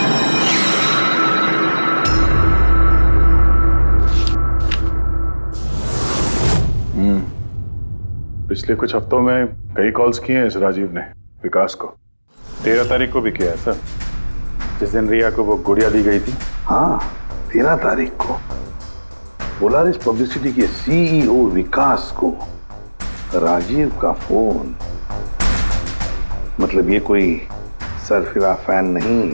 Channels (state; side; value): inverted; both; correlation -1.00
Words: पिछले कुछ हफ्तों में कई कॉल्स किए हैं इस राजीव ने विकास को। 13 तारीख को भी किया है सर, जिस दिन रिया को वो गुड़िया दी गई थी। हाँ 13 तारीख को पोलारिस पब्लिसिटी के CEO विकास को राजीव का फोन। मतलब ये कोई सरफिरा फैन